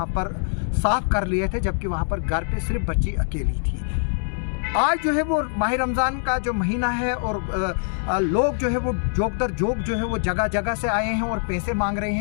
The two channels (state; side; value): silent; right; digital silence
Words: पर साफ़ कर लिए थे, जबकि वहाँ पर घर पे सिर्फ बच्ची अकेली थी। आज जो है वो माह रमज़ान का जो महीना है और लोग जो है वो जोक दर जोक जो है वो जगह जगह से आए हैं और पैसे मांग रहे